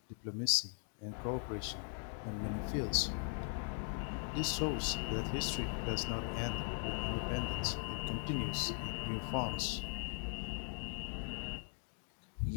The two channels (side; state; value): right; silent; 51 dB below the other